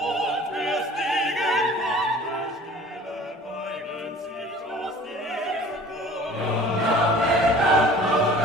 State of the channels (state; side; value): normal; both; correlation 0.47